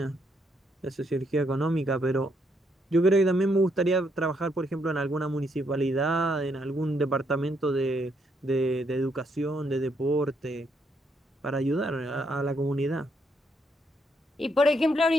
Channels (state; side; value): normal; both; correlation 0.75